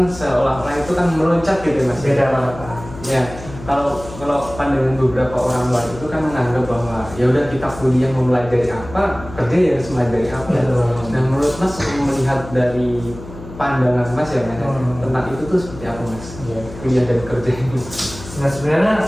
seolah-olah itu kan meloncat gitu Mas. Beda banget. Ya, kalau pandangan beberapa orang luar itu kan menganggap bahwa ya udah kita kuliah mempelajari apa, kerja ya harus mempelajari apa. Nah, menurut Mas melihat dari pandangan Mas ya Mas, tentang itu tuh seperti apa Mas? Ya, kuliah dan kerja ini. Nah sebenarnya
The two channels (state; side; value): noise; left; hum, 15 dB below the sound